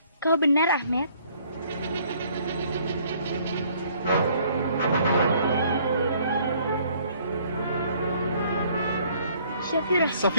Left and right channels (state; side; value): inverted; both; correlation -0.61